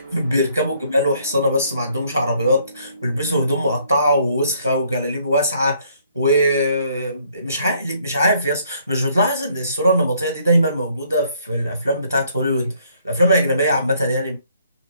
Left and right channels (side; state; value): both; inverted; correlation -0.66